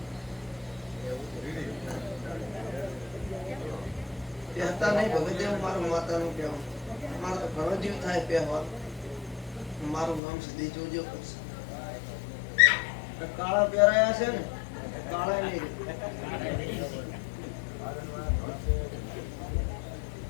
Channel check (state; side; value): drops out; right; at 10.2 s